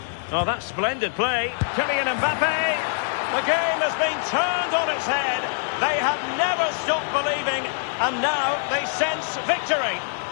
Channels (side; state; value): right; silent; digital silence